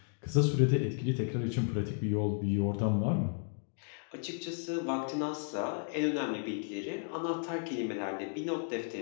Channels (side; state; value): right; silent; 55 dB below the other